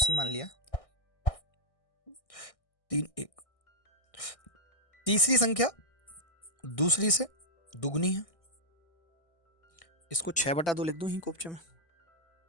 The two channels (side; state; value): right; late; 1.6 ms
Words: मान लिया, 3 1। तीसरी संख्या दूसरी से दुगनी है, इसको 6/2 लिख दूं ही कोपचे में।